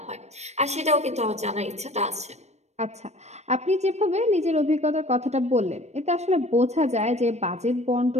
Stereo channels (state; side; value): late; left; 0.32 ms